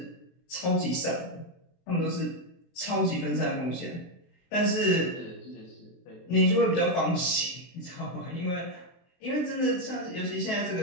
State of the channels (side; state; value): right; late; 23 ms